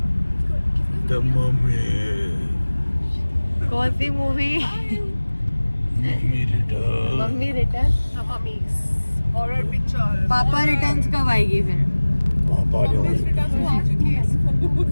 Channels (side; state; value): both; inverted; correlation -1.00